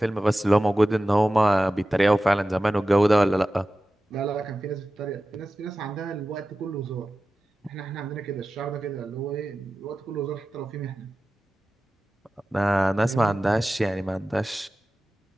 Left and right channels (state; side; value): normal; both; correlation 0.95